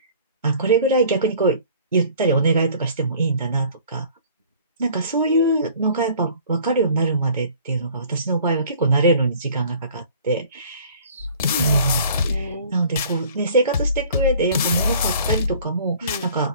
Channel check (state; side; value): inverted; both; correlation -0.50